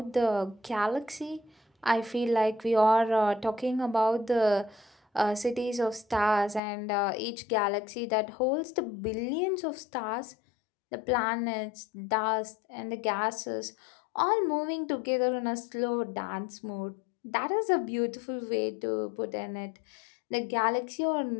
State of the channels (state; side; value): drops out; right; at 6.6 s